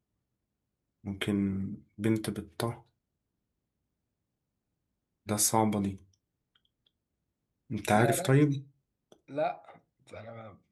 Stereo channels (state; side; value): identical; both; correlation 1.00